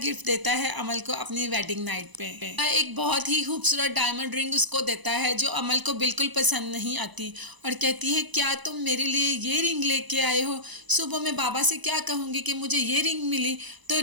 गिफ्ट देता है अमल को अपनी वेडिंग नाइट पे। एक बहुत ही खूबसूरत डायमंड रिंग उसको देता है जो अमल को बिल्कुल पसंद नहीं आती और कहती है क्या तुम मेरे लिए ये रिंग लेके आए हो। सुबह मैं बाबा से क्या कहूँगी कि मुझे ये रिंग मिली, तो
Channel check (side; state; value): left; late; 1.0 ms